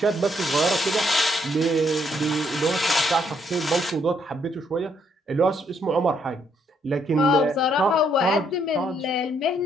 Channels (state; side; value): normal; both; correlation 0.72